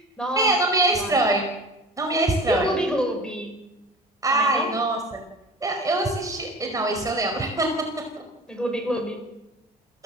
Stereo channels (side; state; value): both; normal; correlation 0.38